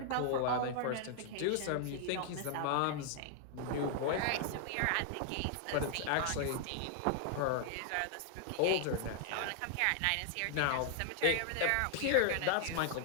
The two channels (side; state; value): both; different; correlation -0.01